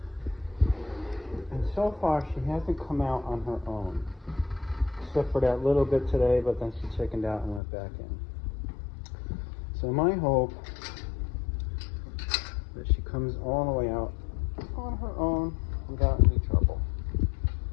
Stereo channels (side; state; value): right; drops out; at 7.6 s